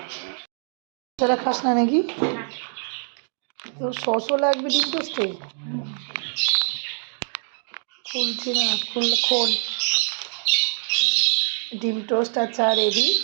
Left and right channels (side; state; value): left; silent; 59 dB below the other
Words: খাস না নাকি? তো সসও লাগবে ডিম টোস্টে? খুলছি না, খোল। ডিম টোস্ট আর চা রেডি,